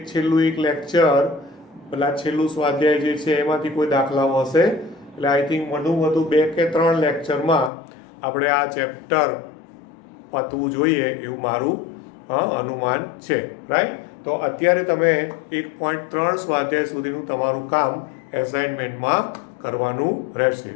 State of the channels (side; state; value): right; drops out; at 7.7 s